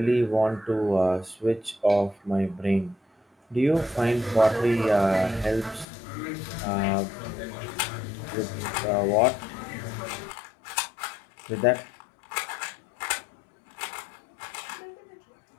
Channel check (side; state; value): right; drops out; at 5.9 s